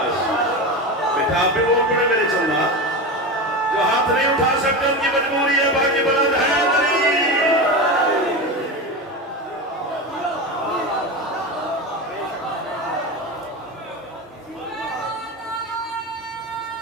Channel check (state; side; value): normal; both; correlation 0.23